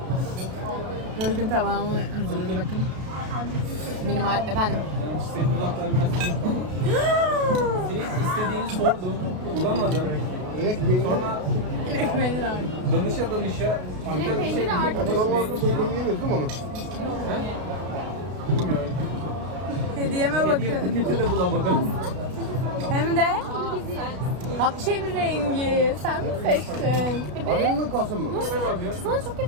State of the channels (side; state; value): left; late; 32 ms